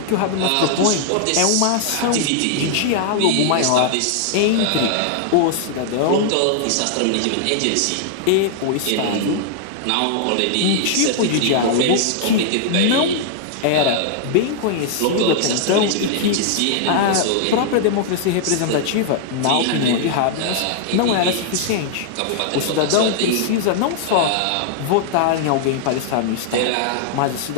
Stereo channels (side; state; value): both; different; correlation -0.01